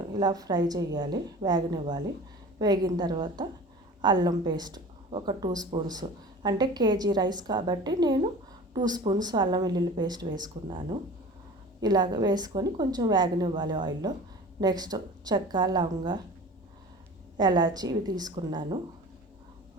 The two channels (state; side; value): normal; both; correlation 0.39